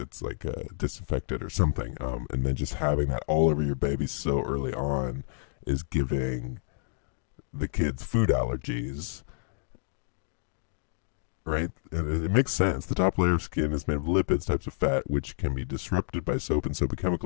like disinfected or something. And then just having that all over your baby so early on is giving the kids food allergies. Right? And it makes sense. The top layer of skin is made of lipids, types of fat, which can be disrupted by soap and soapy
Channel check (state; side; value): silent; right; digital silence